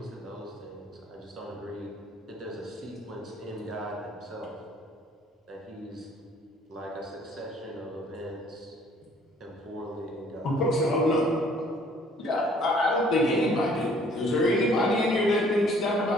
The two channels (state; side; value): normal; both; correlation 0.58